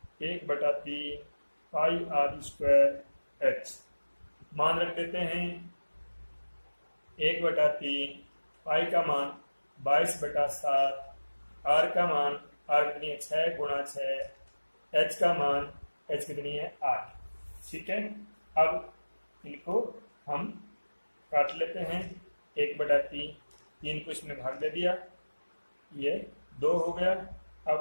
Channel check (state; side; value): inverted; both; correlation -1.00